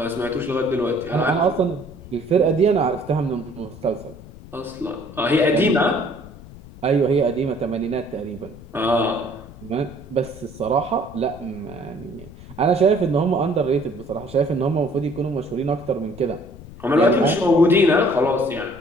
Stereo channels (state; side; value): noise; left; rumble, 18 dB below the sound